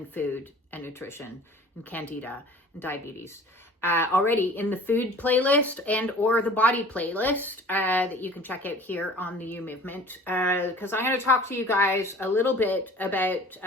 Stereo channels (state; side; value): normal; both; correlation 0.46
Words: food and nutrition and Candida and diabetes already in the food playlist and or the body playlist that you can check out here on the You Movement, because I'm going to talk to you guys a little bit about